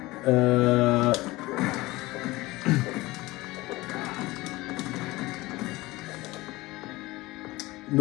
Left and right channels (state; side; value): quieter; right; 20.2 dB